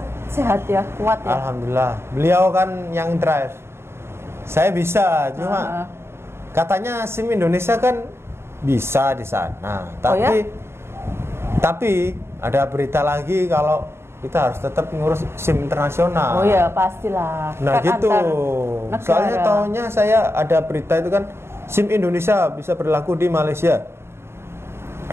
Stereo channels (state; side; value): late; left; 0.12 ms